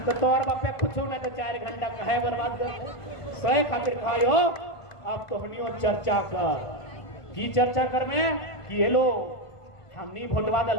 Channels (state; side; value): late; right; 1.5 ms